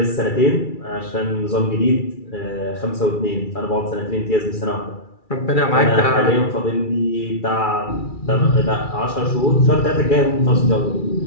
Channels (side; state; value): right; late; 2.3 ms